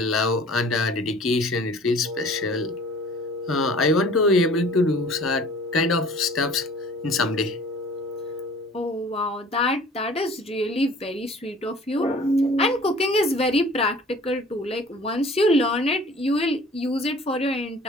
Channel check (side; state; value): both; normal; correlation 0.48